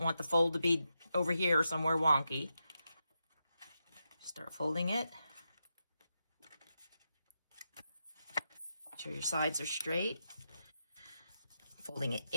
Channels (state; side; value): inverted; both; correlation -0.87